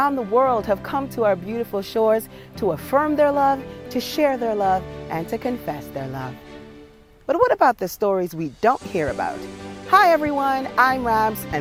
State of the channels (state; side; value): identical; both; correlation 1.00